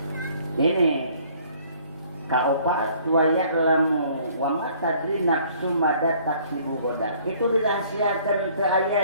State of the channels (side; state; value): both; inverted; correlation -0.58